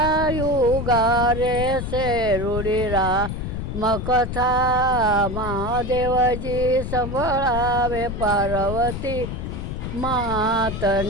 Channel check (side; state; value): left; noise; rumble, 5 dB below the sound